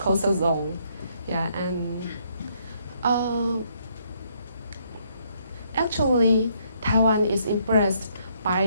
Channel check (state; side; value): inverted; both; correlation -0.70